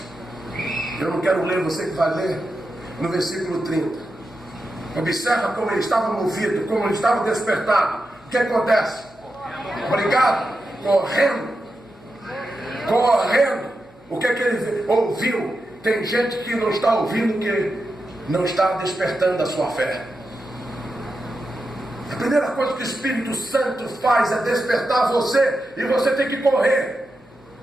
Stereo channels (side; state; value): left; noise; hum, 30 dB below the sound